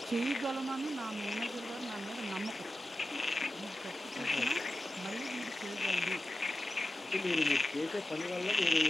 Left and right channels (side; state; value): both; normal; correlation 0.94